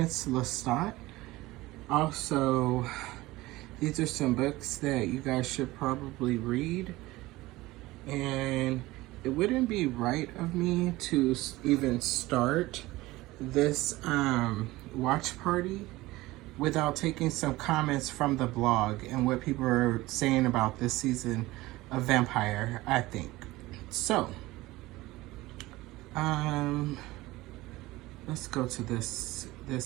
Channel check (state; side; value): quieter; left; 19.0 dB